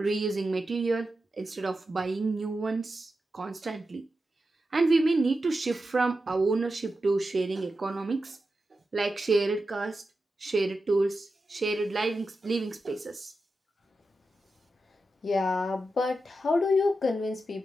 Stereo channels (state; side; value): normal; both; correlation 0.90